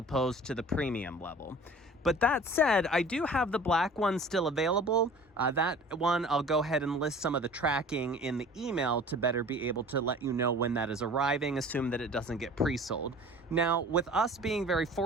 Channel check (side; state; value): both; normal; correlation 0.44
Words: to the premium level. But that said, I do have the black one still available. That one, I'll go ahead and list some of the tracking in the email to better be able to let you know when that is arriving, assume that it doesn't get pre-sold. Now, with us being very